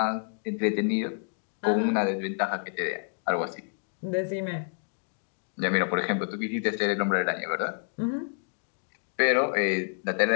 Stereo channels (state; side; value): silent; right; 59 dB below the other